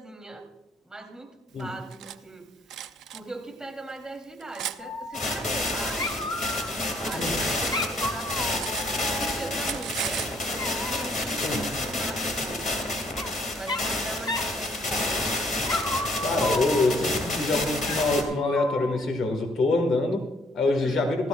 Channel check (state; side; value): normal; both; correlation 0.65